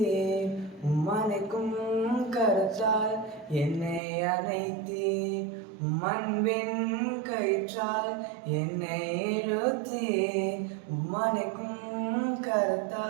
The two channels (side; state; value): left; drops out; at 4.0 s